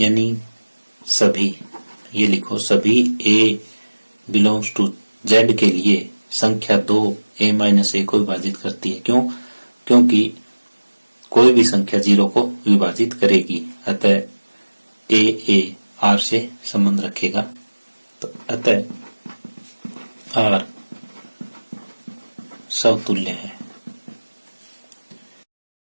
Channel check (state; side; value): inverted; both; correlation -1.00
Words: सभी, ये लिखो, सभी a बिलोंग्स टू Z के लिए संख्या 2 a माइनस a को विभाजित करती है। क्यों? क्योंकि कोई भी संख्या 0 को विभाजित करेगी, अतः a R से संबंध रखेगा। तो अतः R समतुल्य है।